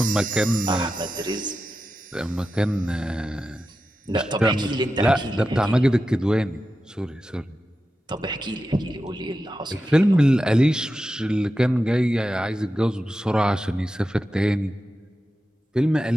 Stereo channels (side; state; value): both; normal; correlation 0.91